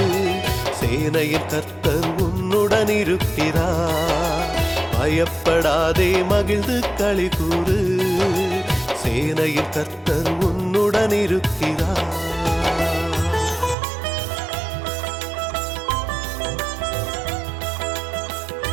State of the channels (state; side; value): drops out; left; at 13.8 s